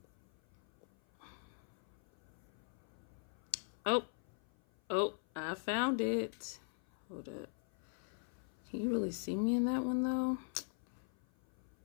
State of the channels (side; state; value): right; silent; 50 dB below the other